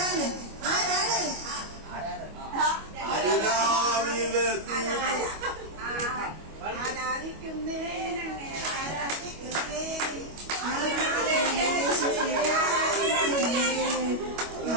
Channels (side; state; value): left; late; 25 ms